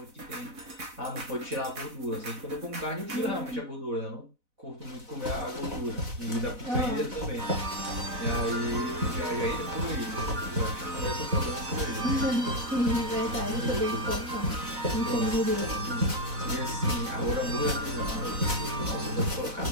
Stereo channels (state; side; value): late; left; 4.0 ms